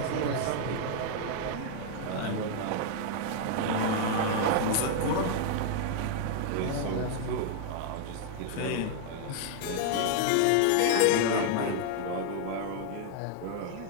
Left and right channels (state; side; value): different; both; correlation 0.00